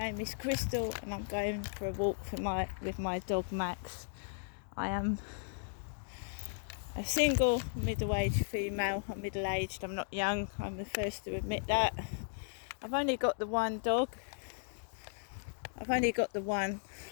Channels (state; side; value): silent; right; digital silence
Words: is Crystal and I'm going for a walk with my dog Max. I am a single middle-aged female. I'm middle-aged, I'm not young. I'm the first to admit that. I've only got the one dog. I